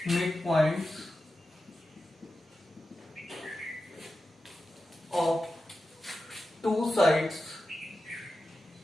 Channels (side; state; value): both; normal; correlation 0.92